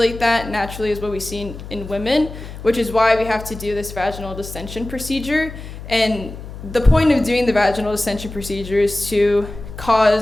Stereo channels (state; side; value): noise; left; hum, 12 dB below the sound